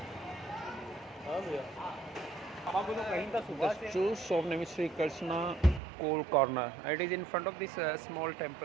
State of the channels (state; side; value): drops out; left; at 5.8 s